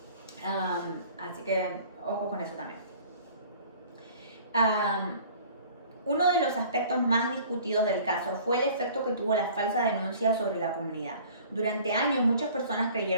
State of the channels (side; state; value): both; inverted; correlation -0.49